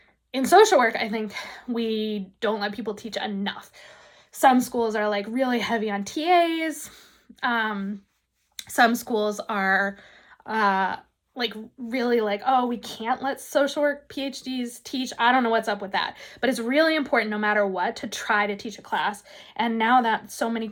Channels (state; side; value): identical; both; correlation 1.00